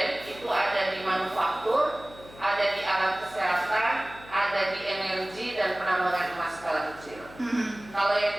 itu ada di manufaktur, ada di alat kesehatan, ada di energi dan penambangan emas skala kecil. Kalau yang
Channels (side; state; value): left; noise; hum, 20 dB below the sound